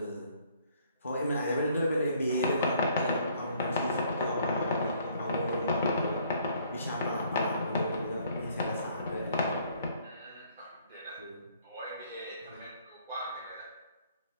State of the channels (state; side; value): inverted; both; correlation -0.62